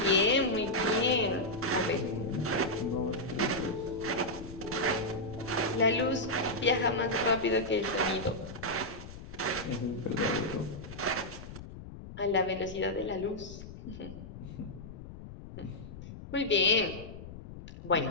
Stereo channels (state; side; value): noise; left; rumble, 13 dB below the sound